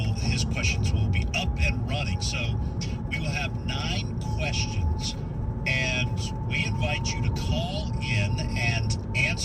questions will be up and running. So we will have 9 questions, and we invite you to call in and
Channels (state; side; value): identical; both; correlation 1.00